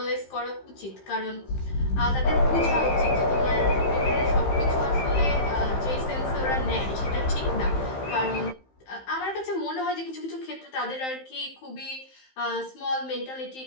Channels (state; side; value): late; right; 15 ms